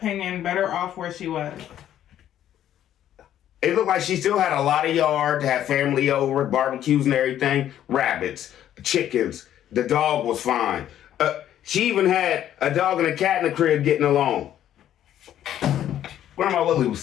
better off where she was. It looked like she still had a lot of yard to have family over, barbecues and everything. Rabbits, chickens. The dog was fine. She even had a dog and a cat in the crib getting along. Grandma Lily was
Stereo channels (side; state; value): right; quieter; 11.3 dB